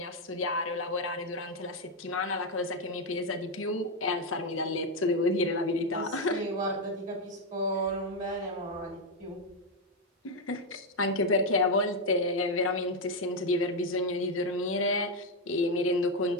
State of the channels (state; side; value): normal; both; correlation 0.03